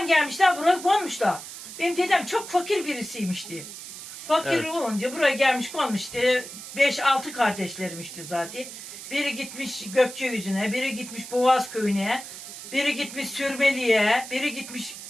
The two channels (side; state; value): right; noise; hiss, 12 dB below the sound